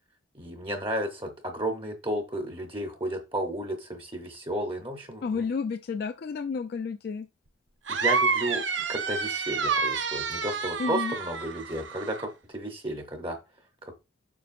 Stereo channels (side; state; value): both; normal; correlation 0.23